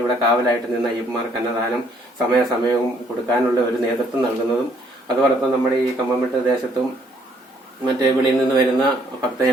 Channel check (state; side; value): normal; both; correlation 0.66